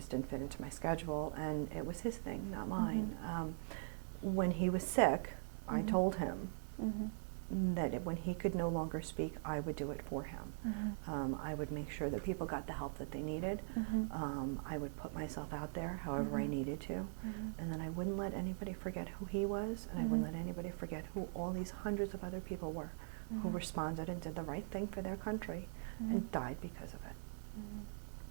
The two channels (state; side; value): silent; left; digital silence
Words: didn't fit into my schedule, and it was his thing, not mine. When he was sick, I told him that when he could no longer speak, I would do it for him. I would make sure that people got the help that they needed. I would put myself out there however I needed to. And then I wouldn't let anybody forget who he was, and I wouldn't let anybody forget who all these hundreds of other people were who responded and did the right thing for their country and died because of it.